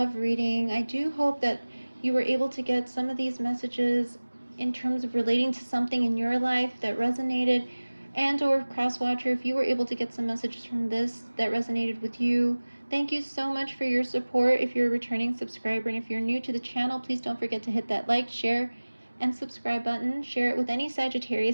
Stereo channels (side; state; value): both; inverted; correlation -1.00